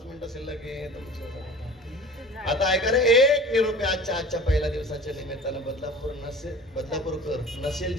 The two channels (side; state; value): both; normal; correlation 0.40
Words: मिनिटं शिल्लक आहे. आता ऐका रे, एक निरोप आजच्या पहिल्या दिवसाच्या निमित्तानं बदलापूरकर नसेल